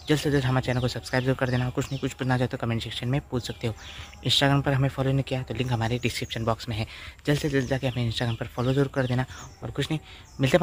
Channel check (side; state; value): both; identical; correlation 1.00